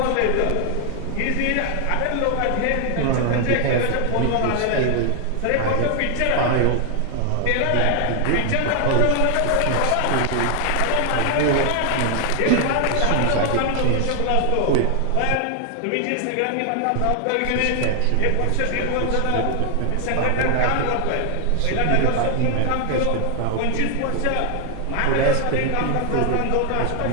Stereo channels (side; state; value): both; different; correlation 0.00